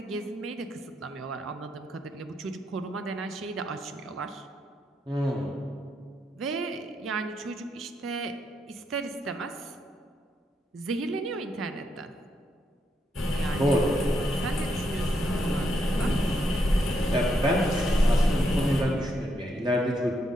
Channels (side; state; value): both; normal; correlation 0.79